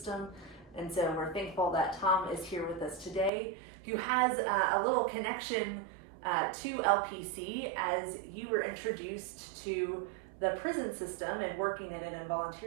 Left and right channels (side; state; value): left; drops out; at 3.3 s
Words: And so we're thankful that Tom is here with us today, who has a little connection to LPC as you were introduced to the prison system and working in it and